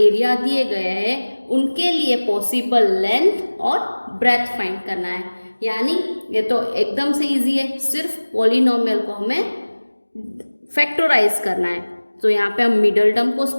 एरिया दिए गए हैं, उनके लिए पॉसिबल लेंथ और ब्रेथ फाइंड करना है. यानी ये तो एकदम से इजी है, सिर्फ पॉलिनोमियल को हमें फैक्टराइज करना है. तो यहाँ पे हम मिडल टर्म को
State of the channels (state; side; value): inverted; both; correlation -1.00